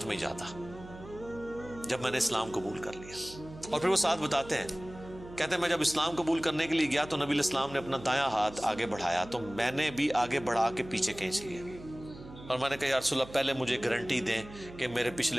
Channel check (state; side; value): noise; right; hum, 16 dB below the sound